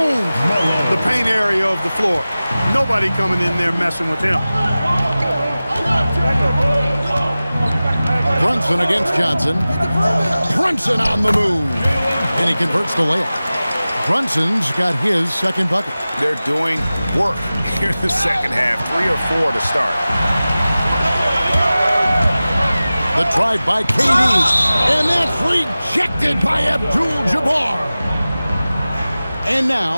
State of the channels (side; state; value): both; inverted; correlation -0.97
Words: the paint area of the floor. Nobody coming in there messing with him. Brunson against Johnson. Brunson on the move. And he converts the layup. Brunson's got his second bucket. They're doing work here in the second half. 3 or 4 to start. The drive by KD, and that's rejected by Abdul-Jabbar. And